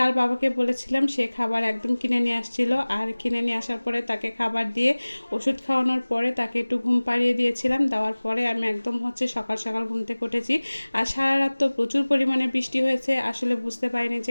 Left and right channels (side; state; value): both; inverted; correlation -1.00